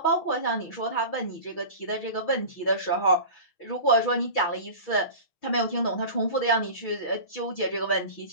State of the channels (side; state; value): right; late; 6.3 ms